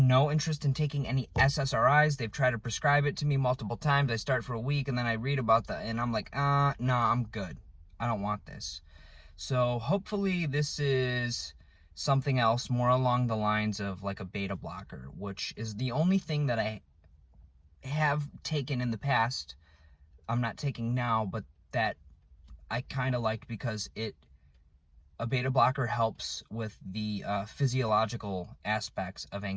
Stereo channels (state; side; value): identical; both; correlation 1.00